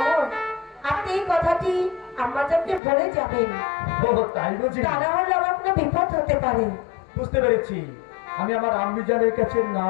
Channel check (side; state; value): right; drops out; at 2.8 s